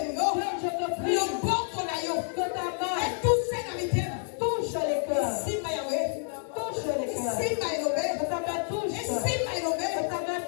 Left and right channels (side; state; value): right; silent; 59 dB below the other